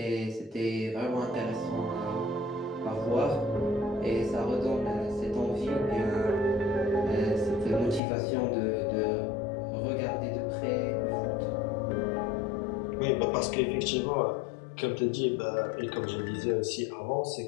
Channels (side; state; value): right; drops out; at 8.0 s